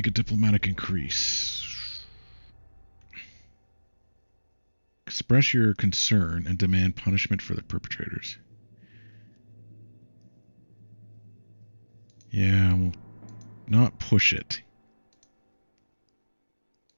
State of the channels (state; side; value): inverted; both; correlation -1.00